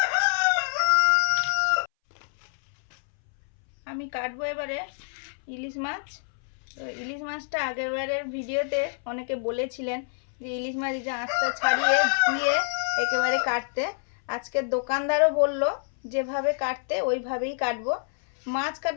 আমি কাটবো এবারে ইলিশ মাছ। তো ইলিশ মাছটা আগের বারের ভিডিওতে অনেকে বলেছিলেন যে ইলিশ মাছ যে আঁশটা ছাড়িয়ে ধুয়ে একেবারে কাটতে। আজকের দোকানদারও বলল যেভাবে কাটতে ওইভাবেই কাটবো। মাছ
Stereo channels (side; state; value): right; silent; 60 dB below the other